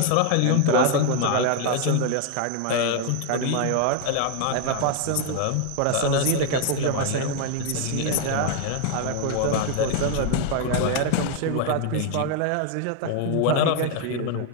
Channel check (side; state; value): both; different; correlation 0.01